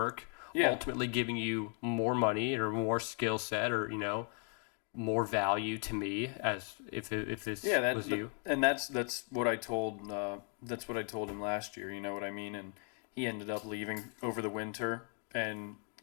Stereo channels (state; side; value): quieter; right; 39.7 dB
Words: ultimately giving you more money or more skill set, or, you know, more value to me, as if this was you. And that's what I told him last year. You know what I mean? And he ended up leaving over the winter and